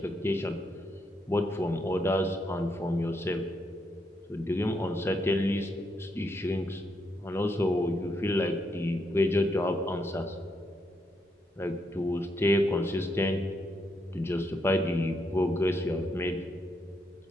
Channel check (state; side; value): normal; both; correlation 0.78